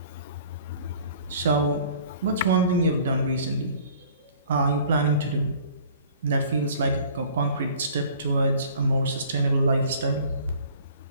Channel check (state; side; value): inverted; both; correlation -0.51